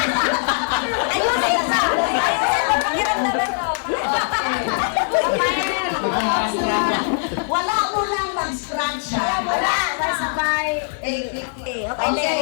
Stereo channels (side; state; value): right; silent; digital silence